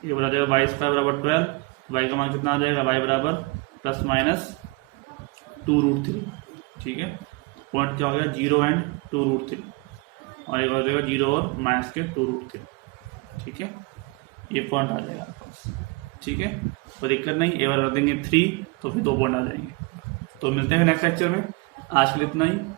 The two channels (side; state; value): left; quieter; 27.3 dB